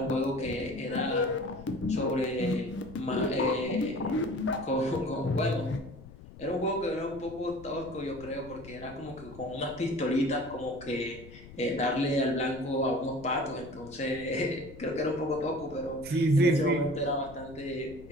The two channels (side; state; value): left; noise; rumble, 17 dB below the sound